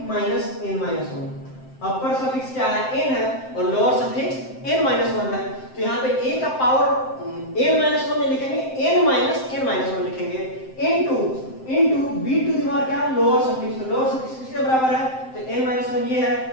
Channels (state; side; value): late; right; 7.7 ms